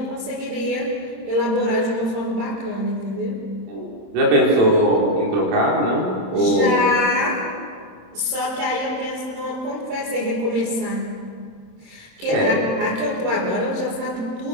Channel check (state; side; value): late; left; 26 ms